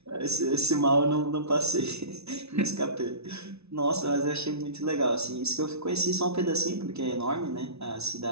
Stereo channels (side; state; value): left; late; 0.80 ms